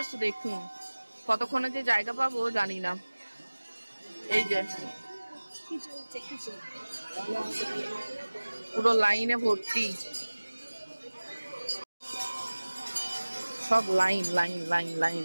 দেখুন, কতক্ষণে যে জায়গা পাবো জানি না। এই যে পুরো লাইনে ভর্তি, সব লাইন লাইন লাইন লাইন,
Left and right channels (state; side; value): inverted; both; correlation -1.00